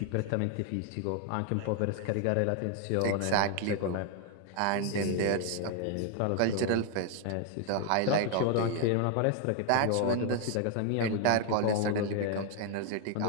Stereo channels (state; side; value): different; both; correlation 0.00